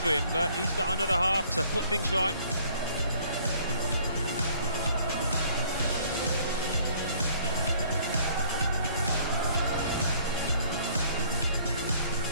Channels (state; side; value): inverted; both; correlation -0.58